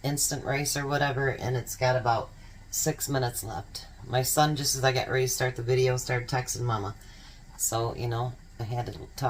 instant rice or whatever, and it's got about 6 minutes left. My son, just as I got ready to start the video, started texting Mama. So, you know, I had to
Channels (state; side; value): identical; both; correlation 1.00